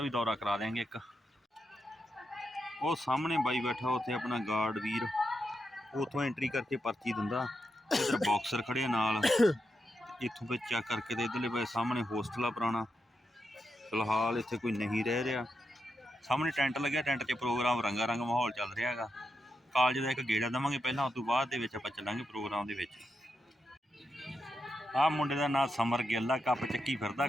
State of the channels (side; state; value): both; normal; correlation 0.85